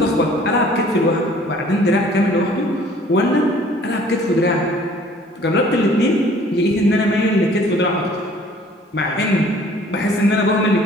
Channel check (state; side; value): normal; both; correlation 0.54